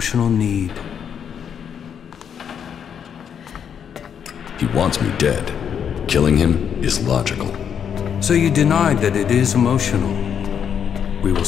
need. He wants me dead. Killing him is logical. So you denied that it is emotional. We will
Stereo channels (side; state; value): right; quieter; 8.0 dB